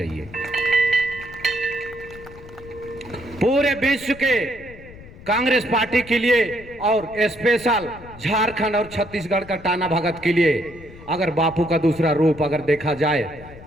पूरे विश्व के कांग्रेस पार्टी के लिए और स्पेशल झारखंड और छत्तीसगढ़ का टाना भगत के लिए अगर बापू का दूसरा रूप अगर देखा जाए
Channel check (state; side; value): noise; left; rumble, 18 dB below the sound